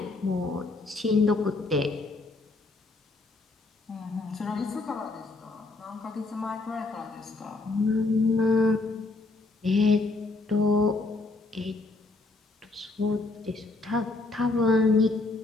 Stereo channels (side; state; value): right; quieter; 3.3 dB